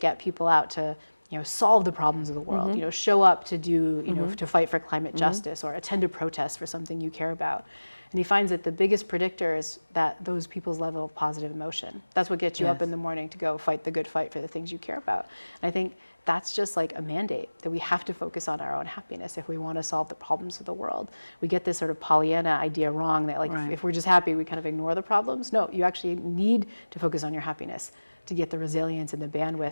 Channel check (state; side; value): inverted; both; correlation -1.00